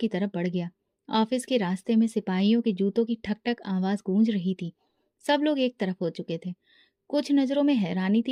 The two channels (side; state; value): both; identical; correlation 1.00